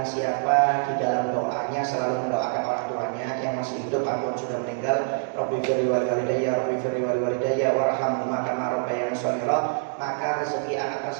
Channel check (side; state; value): left; silent; digital silence